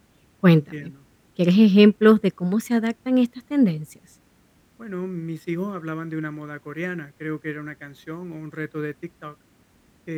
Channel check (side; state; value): both; identical; correlation 1.00